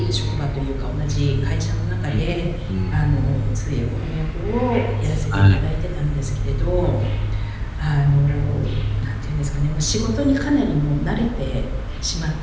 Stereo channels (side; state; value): both; identical; correlation 1.00